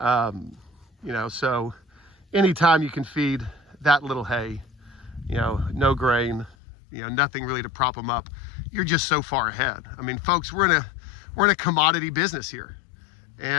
know, so anytime you can feed that little hay, you know, no grain, you know, nothing really to prop them up, you're just so far ahead. I mean, folks, we're in a commodity business here.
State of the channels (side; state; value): right; drops out; at 6.6 s